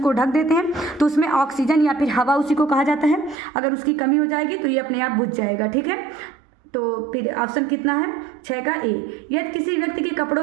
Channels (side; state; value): left; drops out; at 3.4 s